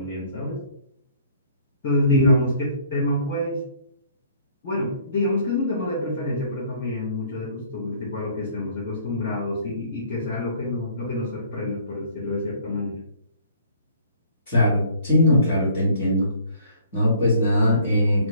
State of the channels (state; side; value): inverted; both; correlation -0.57